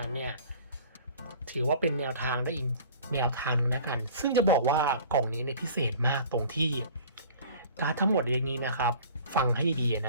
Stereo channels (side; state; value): both; inverted; correlation -0.45